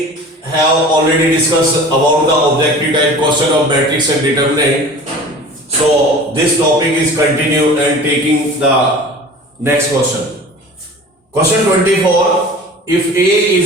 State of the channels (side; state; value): both; normal; correlation 0.40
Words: have already discussed about the objective type question of matrix and determinant. So this topic is continued and taking the next question. Question 24. If A